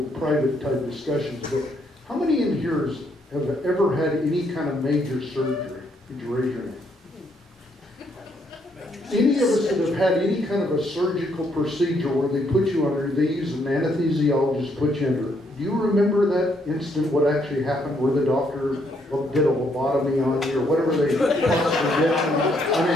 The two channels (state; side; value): normal; both; correlation 0.72